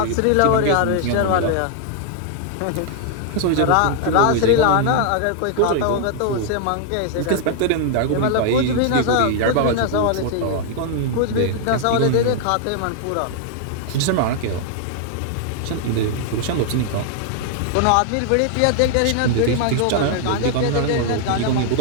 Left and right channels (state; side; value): different; both; correlation -0.01